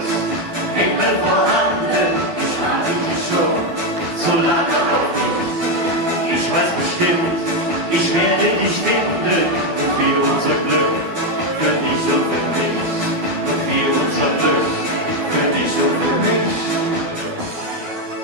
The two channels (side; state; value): left; late; 12 ms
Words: Himmel vorhanden, ich warte hier schon so lange auf dich. Ich weiß bestimmt, ich werde dich finden und wir unser Glück für dich und für mich. Und wir unser Glück für dich und für mich.